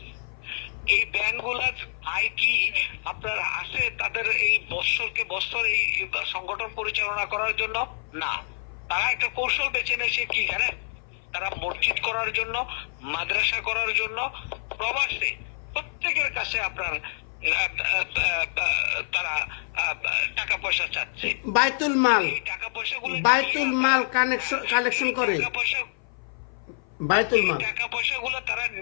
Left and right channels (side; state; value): right; silent; 55 dB below the other